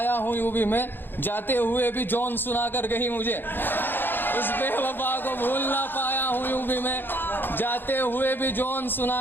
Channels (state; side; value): late; right; 0.098 ms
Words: हूँ यूं भी मैं, जाते हुए भी जौन सुना कर गई मुझे। उस बेवफा को भूल ना पाया हूँ यूं भी मैं, जाते हुए भी जौन